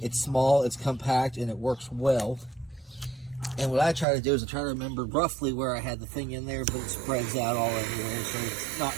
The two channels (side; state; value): left; drops out; at 4.0 s